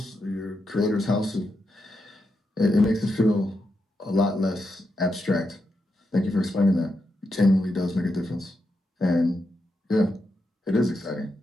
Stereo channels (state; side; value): normal; both; correlation 0.85